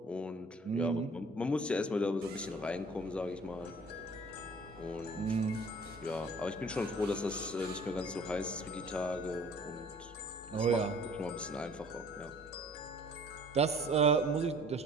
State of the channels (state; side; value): normal; both; correlation 0.51